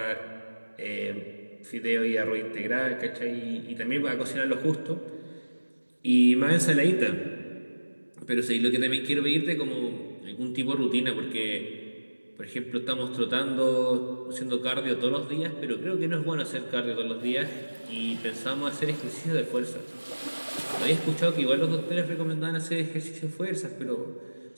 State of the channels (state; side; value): inverted; both; correlation -1.00